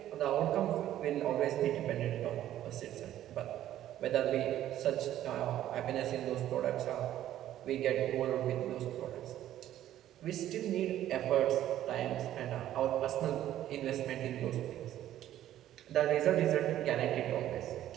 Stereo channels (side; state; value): left; quieter; 12.5 dB